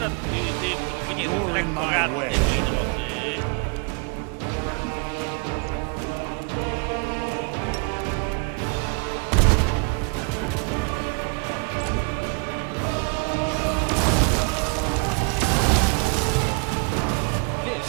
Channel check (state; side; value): quieter; left; 36.0 dB